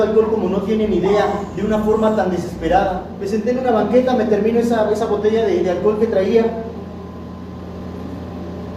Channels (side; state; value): both; identical; correlation 1.00